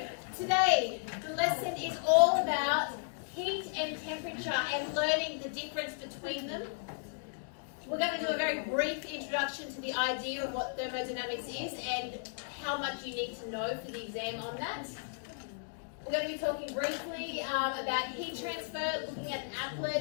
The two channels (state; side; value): silent; right; digital silence